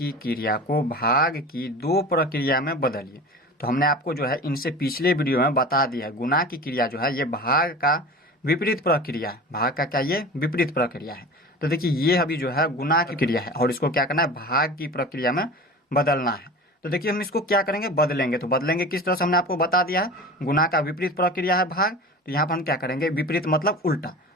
क्रिया को भाग की 2 प्रक्रिया में बदलिए। तो हमने आपको जो है इनसे पिछले वीडियो में बता दिया है, गुणा की क्रिया जो है ये भाग का विपरीत प्रक्रिया है। भाग का क्या, ये विपरीत प्रक्रिया है। तो देखिए ये अभी जो है गुणा की क्रिया है, और इसको क्या करना है, भाग की प्रक्रिया में बदलना है। तो देखिए हम इसको क्या करेंगे, बदलेंगे। तो बदलेंगे किस तरह से, हमने आपको बता दिया है, गुणा का विपरीत प्रक्रिया है भाग। तो यहाँ पर हम क्या करेंगे, विपरीत मतलब उल्टा।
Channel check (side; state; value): both; normal; correlation 0.35